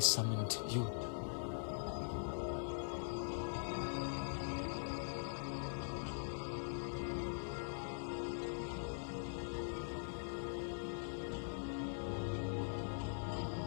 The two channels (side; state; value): right; silent; digital silence